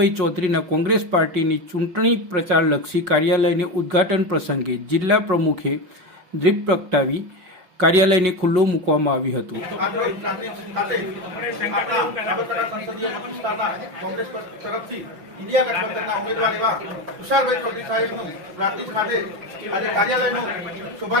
ચૌધરીના કોંગ્રેસ પાર્ટીની ચૂંટણી પ્રચારલક્ષી કાર્યાલયને ઉદ્ઘાટન પ્રસંગે જિલ્લા પ્રમુખે દીપ પ્રગટાવી કાર્યાલયને ખુલ્લું મૂકવામાં આવ્યું હતું. કોંગ્રેસ તરફથી ઇન્ડિયા ગઠબંધનના ઉમેદવાર એવા તુષારભાઈ ચૌધરી સાહેબનું પ્રાંતિજ ખાતે આજે કાર્યાલયનો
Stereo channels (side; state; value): left; late; 5.8 ms